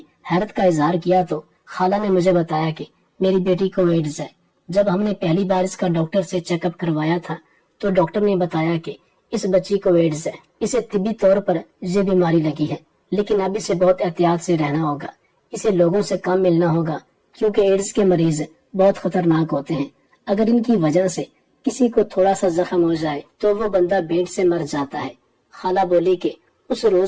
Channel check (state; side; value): identical; both; correlation 1.00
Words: حیرت کا اظہار کیا تو خالہ نے مجھے بتایا کہ میری بیٹی کو ایڈز ہے۔ جب ہم نے پہلی بار اس کا ڈاکٹر سے چیک اپ کروایا تھا تو ڈاکٹر نے بتایا کہ اس بچی کو ایڈز ہے، اسے طبی طور پر یہ بیماری لگی ہے، لیکن اب اسے بہت احتیاط سے رہنا ہوگا، اسے لوگوں سے کم ملنا ہوگا کیونکہ ایڈز کے مریض بہت خطرناک ہوتے ہیں۔ اگر ان کی وجہ سے کسی کو تھوڑا سا زخم ہو جائے تو وہ بندہ بینٹ سے مر جاتا ہے۔ خالہ بولی کہ اس